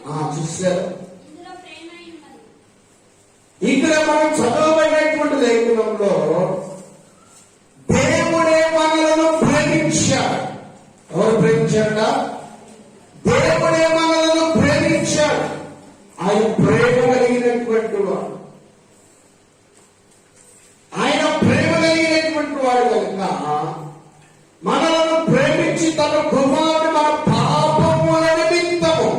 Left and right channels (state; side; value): identical; both; correlation 1.00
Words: చూశారు. ఇక్కడ మనం చదవబడినటువంటి లేఖనంలో దేవుడే మనలను ప్రేమించాడు. ఎవరు ప్రేమించాడ? దేవుడే మనలను ప్రేమించాడు. ఆయన ప్రేమ కలిగినటువంటి వాడు, ఆయన ప్రేమ కలిగినటువంటి వాడు కనుక మనలను ప్రేమించి తన కుమారుడు మన